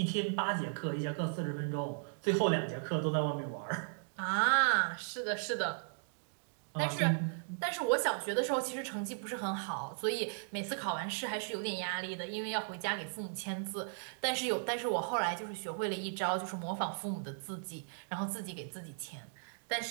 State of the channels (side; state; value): left; silent; digital silence